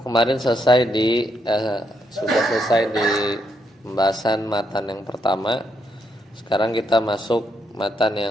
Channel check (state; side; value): normal; both; correlation 0.78